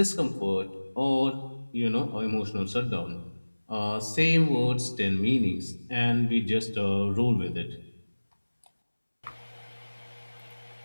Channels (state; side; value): inverted; both; correlation -1.00